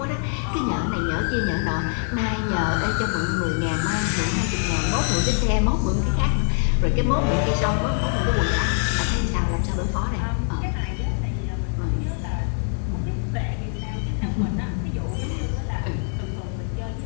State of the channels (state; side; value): silent; right; 55 dB below the other